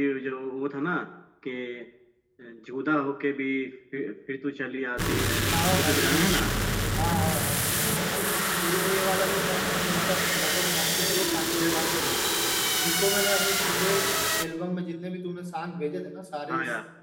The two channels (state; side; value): identical; both; correlation 1.00